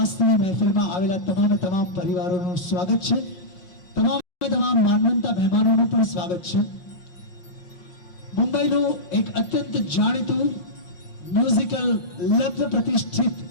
મહેફિલમાં આવેલા તમામ પરિવારોનું સ્વાગત છે। તમામ માનવંતા મહેમાનોનું પણ સ્વાગત છે। મુંબઈનું એક અત્યંત જાણીતું મ્યુઝિકલ લગ્ન પ્રતિષ્ઠિત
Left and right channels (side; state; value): right; late; 5.5 ms